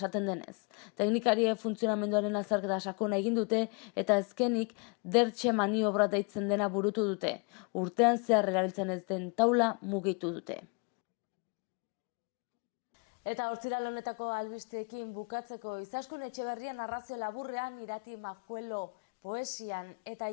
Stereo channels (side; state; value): right; quieter; 34.4 dB